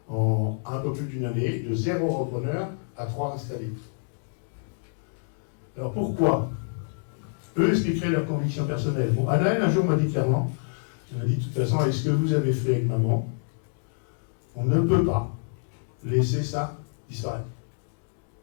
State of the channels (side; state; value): right; silent; digital silence